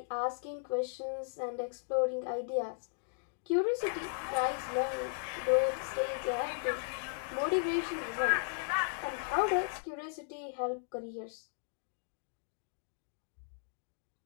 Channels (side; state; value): right; silent; digital silence